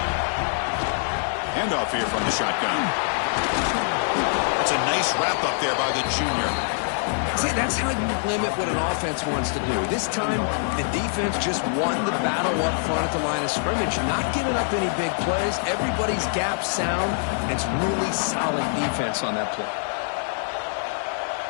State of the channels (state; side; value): silent; right; 62 dB below the other